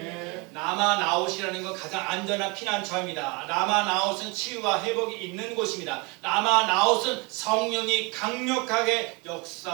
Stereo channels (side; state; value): left; quieter; 28.9 dB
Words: 남아 나웃이라는 건 가장 안전한 피난처입니다. 남아 나웃은 치유와 회복이 있는 곳입니다. 남아 나웃은 성령이 강력하게